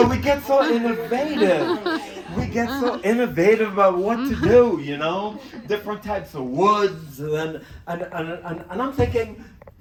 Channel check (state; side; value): identical; both; correlation 1.00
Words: we get so innovative. We get so innovative about what to do, different types of woods, and I'm thinking,